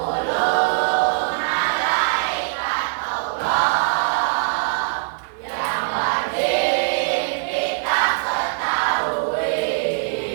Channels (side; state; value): left; silent; 64 dB below the other